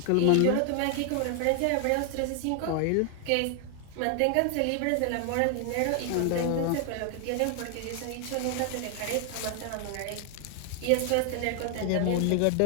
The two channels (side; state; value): both; different; correlation 0.00